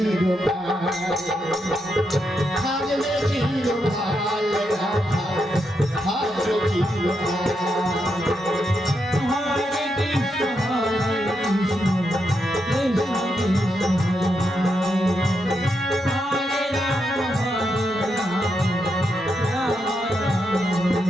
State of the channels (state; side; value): normal; both; correlation 0.82